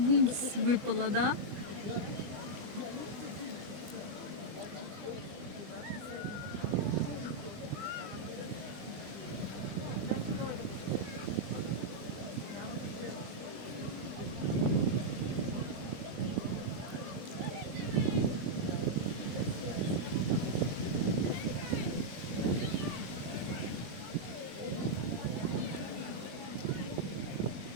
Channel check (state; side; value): late; left; 20 ms